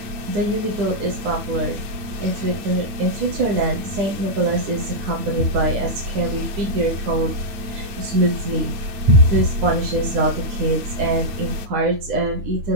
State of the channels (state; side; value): late; left; 8.9 ms